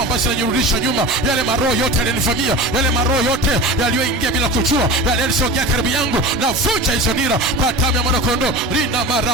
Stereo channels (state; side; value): normal; both; correlation 0.32